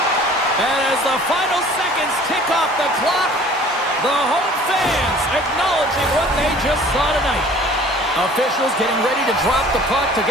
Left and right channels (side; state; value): both; normal; correlation 0.49